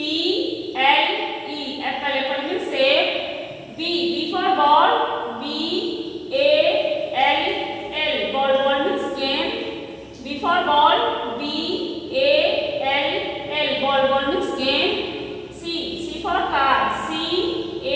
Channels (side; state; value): both; identical; correlation 1.00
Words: apple, apple means सेब। B for ball, B-A-L-L, ball, ball means game। B for ball, B-A-L-L, ball, ball means game। C for car,